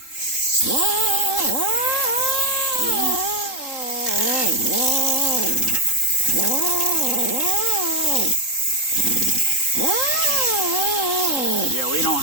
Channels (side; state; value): right; late; 3.8 ms